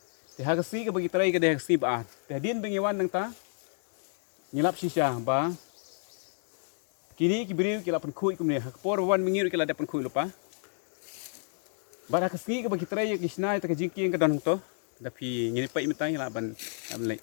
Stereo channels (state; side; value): silent; right; 58 dB below the other